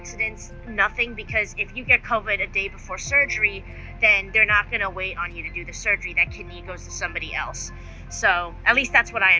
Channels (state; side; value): identical; both; correlation 1.00